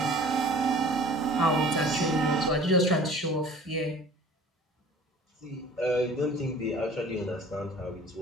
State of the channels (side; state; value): both; normal; correlation 0.46